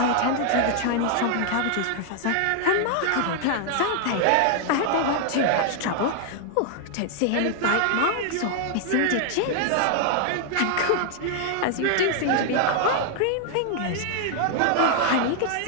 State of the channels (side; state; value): both; different; correlation 0.00